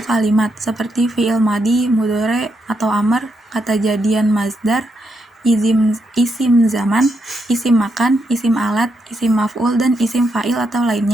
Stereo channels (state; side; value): normal; both; correlation 0.81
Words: kalimat, seperti fi'il madi, mudhari atau amr, kata jadian mazdar, isim zaman, isim makan, isim alat, isim maf'ul, dan isim fa'il atau